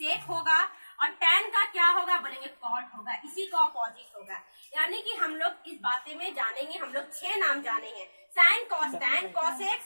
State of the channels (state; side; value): inverted; both; correlation -1.00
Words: होगा। और टैन का क्या होगा? बोलेंगे कॉट होगा। इसी का ऑपोजिट होगा। यानी कि हम लोग इस बातें में जानेंगे, हम लोग 6 नाम जाने हैं, साइन, कॉस, टैन, कॉसेक,